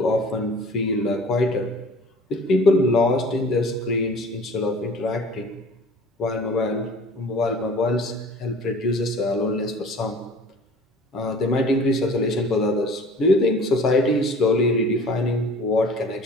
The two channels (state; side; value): normal; both; correlation 0.45